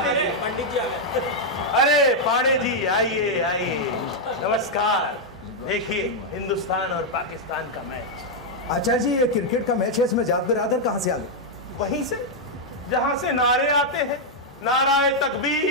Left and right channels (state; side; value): normal; both; correlation -0.02